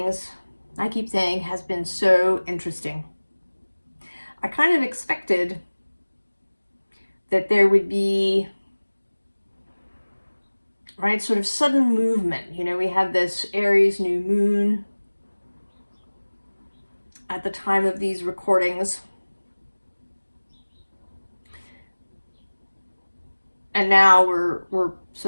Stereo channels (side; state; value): both; inverted; correlation -1.00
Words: I keep saying, has been so interesting. I kind of expected that there would be, right, sort of sudden movement. You know, we had this Aries new moon at the time of these recordings. And now we're